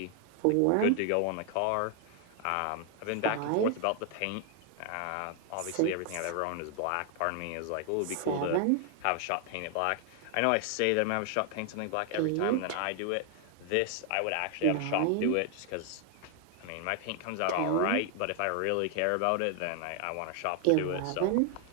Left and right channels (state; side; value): different; both; correlation 0.00